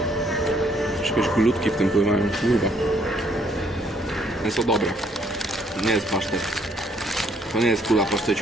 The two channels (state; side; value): normal; both; correlation 0.67